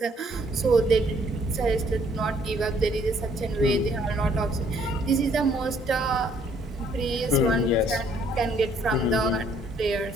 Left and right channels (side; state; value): both; normal; correlation 0.64